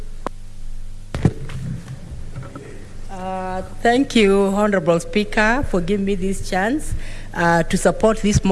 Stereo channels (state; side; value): identical; both; correlation 1.00